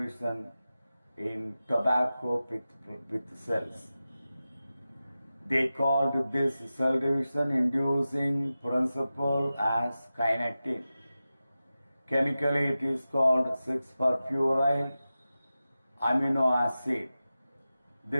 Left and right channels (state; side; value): inverted; both; correlation -0.94